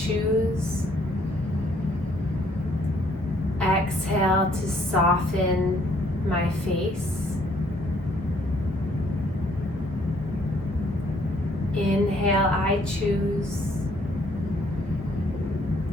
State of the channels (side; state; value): both; normal; correlation 0.65